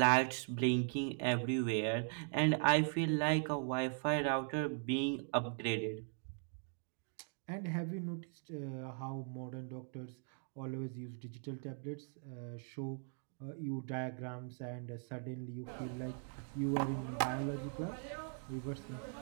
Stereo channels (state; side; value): silent; left; 51 dB below the other